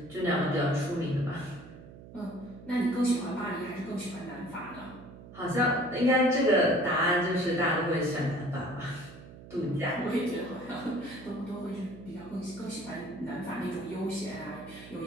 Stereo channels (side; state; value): right; noise; hum, 17 dB below the sound